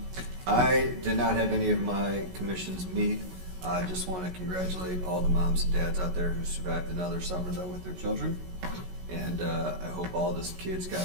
I did not have any of my commissions meet. I just want to congratulate all the moms and dads out there who survived another summer, though, with their children. And I hope all the kids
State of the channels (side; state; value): left; late; 16 ms